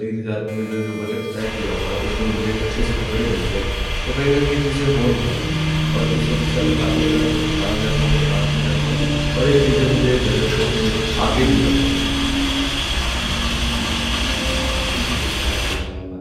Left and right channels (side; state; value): both; identical; correlation 1.00